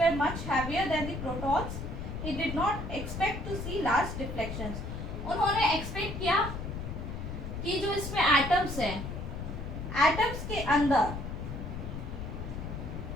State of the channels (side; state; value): left; noise; rumble, 6 dB below the sound